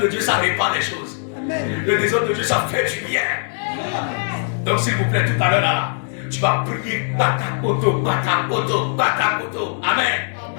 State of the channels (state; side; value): silent; right; 65 dB below the other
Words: de Dieu, ça répare les choses. Amen. Le trésor de Dieu, ça fait du bien. Amen. Donc s'il vous plaît, tout à l'heure là, tu vas prier batakoto, batakoto, batakoto. Amen.